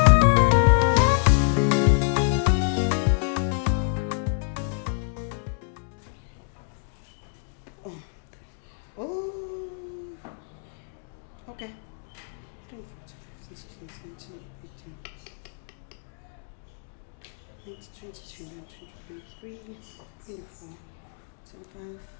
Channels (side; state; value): right; silent; digital silence